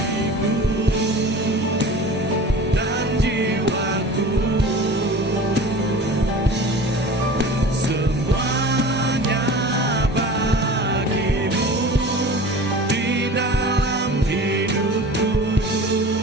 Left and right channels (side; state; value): both; normal; correlation 0.39